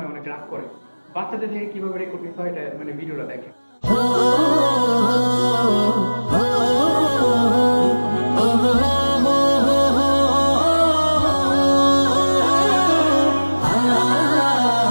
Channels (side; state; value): both; inverted; correlation -1.00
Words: অনেক রাগ করে। বাচ্চাদের থেকে কিভাবে রেকর্ড নিতে হয় এটা মানে ভিডিওটা দেখে।